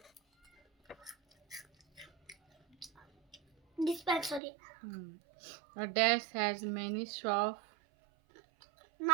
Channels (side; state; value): left; drops out; at 4.4 s